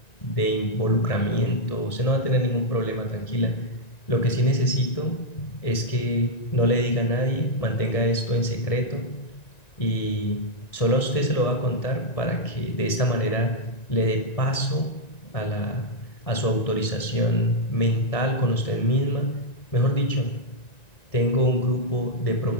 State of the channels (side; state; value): right; late; 1.9 ms